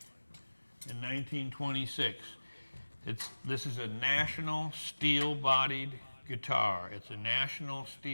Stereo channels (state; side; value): inverted; both; correlation -1.00